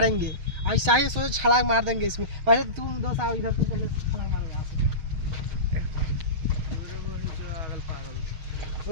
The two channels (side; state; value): left; late; 6.4 ms